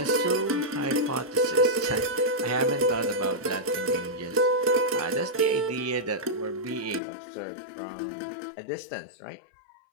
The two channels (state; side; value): drops out; right; at 7.0 s